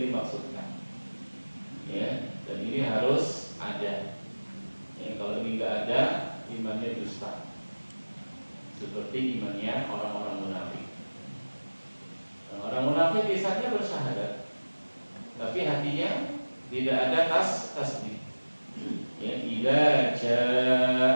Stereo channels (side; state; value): both; inverted; correlation -1.00